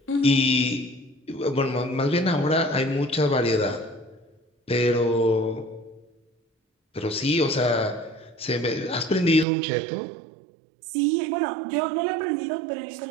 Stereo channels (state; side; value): drops out; left; at 9.5 s